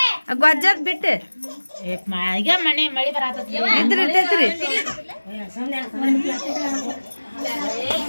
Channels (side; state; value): both; inverted; correlation -1.00